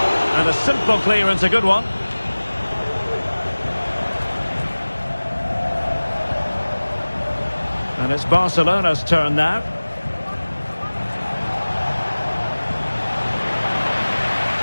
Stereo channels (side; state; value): both; inverted; correlation -1.00